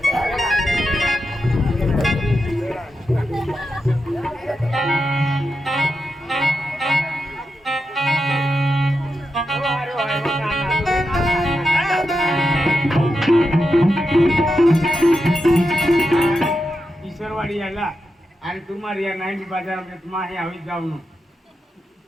ईश्वरवाडी आला आणि तुम्हाला या 90 बाजार में तुम्हारे हवी जाऊन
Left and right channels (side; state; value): both; normal; correlation 0.87